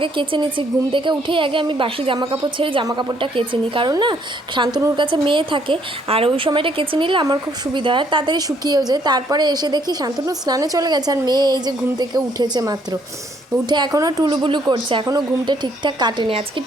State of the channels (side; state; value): both; normal; correlation 0.67